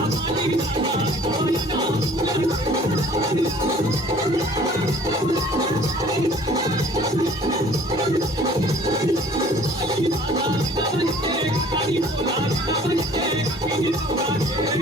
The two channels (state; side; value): normal; both; correlation 0.52